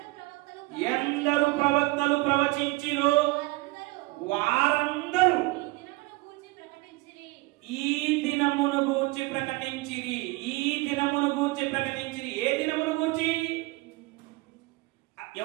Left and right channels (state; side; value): quieter; left; 22.5 dB